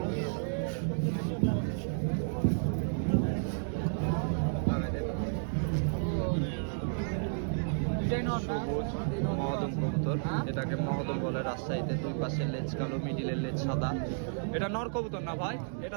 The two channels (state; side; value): silent; left; digital silence